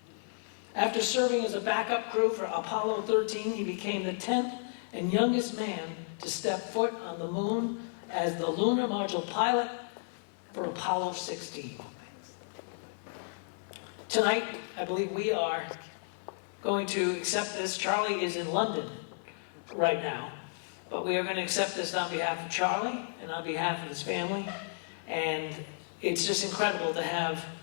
After serving as a backup crew for Apollo 13, he became the 10th and youngest man to step foot on the moon as the lunar module pilot for Apollo 16. Tonight, I believe we are going to accept this. Charlie is in London right now, but we are going to accept this on behalf of Charlie and on behalf of his family. And it's just incredible to have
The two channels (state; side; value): silent; right; digital silence